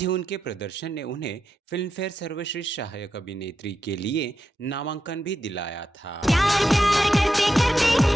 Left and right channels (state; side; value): normal; both; correlation 0.87